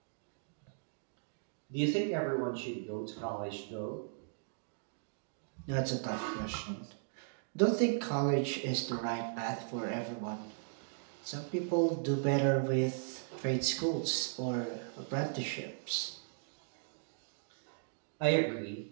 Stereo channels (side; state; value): left; silent; digital silence